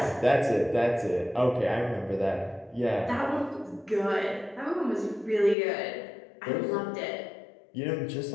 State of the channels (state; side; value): drops out; right; at 5.6 s